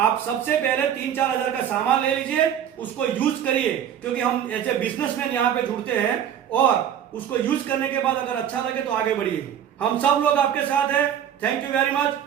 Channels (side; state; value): left; quieter; 9.6 dB